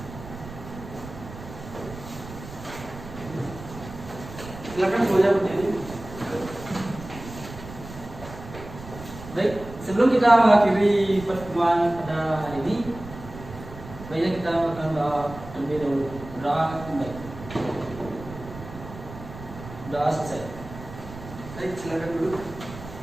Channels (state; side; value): noise; right; rumble, 14 dB below the sound